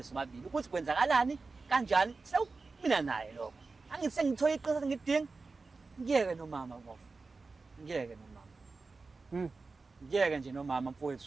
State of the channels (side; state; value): left; quieter; 4.0 dB